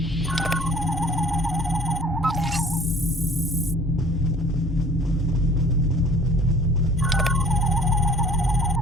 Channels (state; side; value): normal; both; correlation 0.50